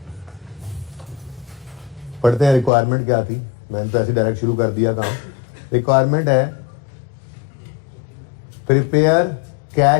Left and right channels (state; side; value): drops out; right; at 2.7 s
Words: पढ़ते हैं रिक्वायरमेंट क्या थी। मैंने तो ऐसे डायरेक्ट शुरू कर दिया काम। रिक्वायरमेंट है prepare